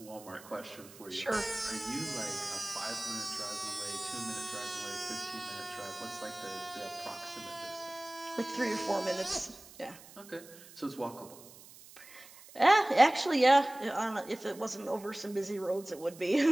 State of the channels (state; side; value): noise; right; hiss, 20 dB below the sound